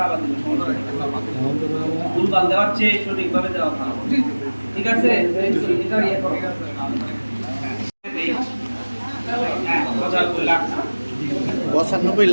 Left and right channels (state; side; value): inverted; both; correlation -1.00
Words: আবার দিব, ভুলভাল দেওয়ার চেয়ে সঠিকভাবে দেওয়া ভালো। ঠিক আছে, এটা ইয়ে করো। হ্যাঁ 95 লাখ, 95